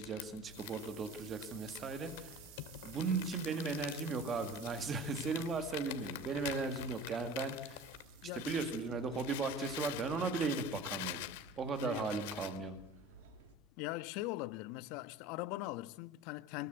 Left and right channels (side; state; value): both; normal; correlation 0.40